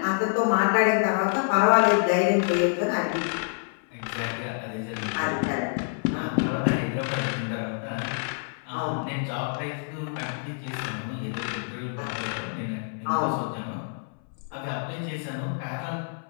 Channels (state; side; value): silent; right; 60 dB below the other